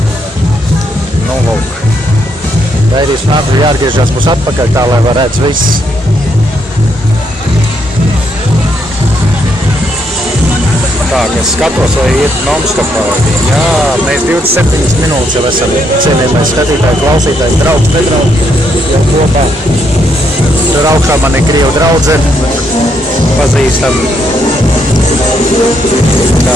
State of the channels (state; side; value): normal; both; correlation 0.75